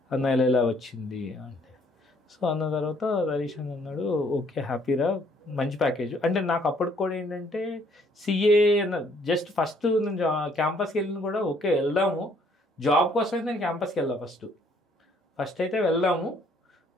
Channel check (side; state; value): both; normal; correlation 0.64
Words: అన్న ఇలా వచ్చింది అంటే. సో అన్న తర్వాత తరీష్ అని అన్నాడు ఓకే హ్యాపీరా, మంచి ప్యాకేజ్. అంటే నాకు అప్పటికి కూడా ఏంటంటే సిఏ అన్న జస్ట్ ఫస్ట్ నేను క్యాంపస్కి వెళ్ళిన కూడా ఓకే వెళ్దాము, జాబ్ కోసం అయితే నేను క్యాంపస్కి వెళ్ళా ఫస్ట్ అయితే వెళ్దాము